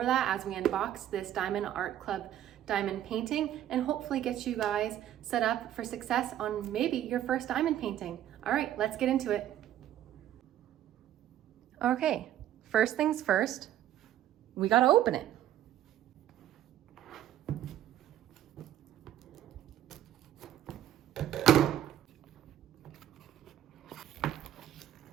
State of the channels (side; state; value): left; quieter; 11.9 dB